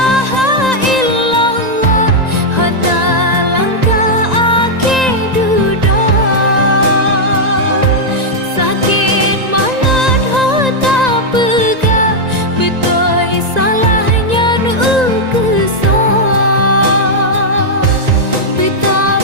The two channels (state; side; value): late; left; 1.9 ms